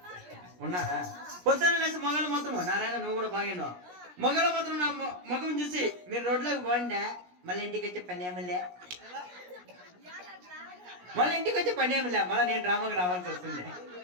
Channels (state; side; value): late; left; 17 ms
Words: ఉన్నారా? పొద్దున్న లేస్తే మగలు మాత్రం నారాయణ నువ్వు కూడా బాగా మగలు మాత్రం నా మగం చూసి మీరు రోడ్లోకి పోండి, మళ్ళీ ఇంటికి వచ్చే పని ఏమిలే, మళ్ళీ నేను డ్రామాకి రావాల్సి వస్తుంది.